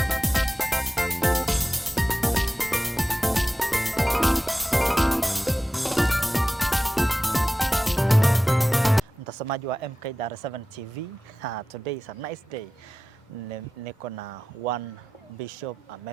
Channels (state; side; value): normal; both; correlation 0.95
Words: Mtazamaji wa MK Dar 7 TV, today is a nice day. Niko na one bishop,